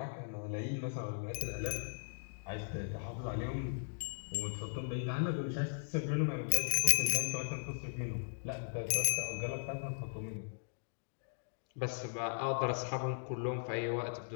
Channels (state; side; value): silent; right; digital silence